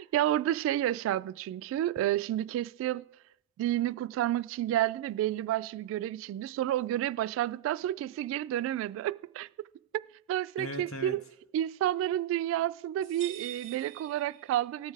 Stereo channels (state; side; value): quieter; left; 12.1 dB